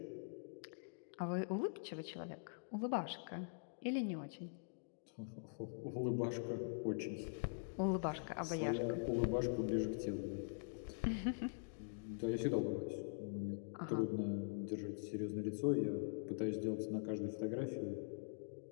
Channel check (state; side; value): silent; right; digital silence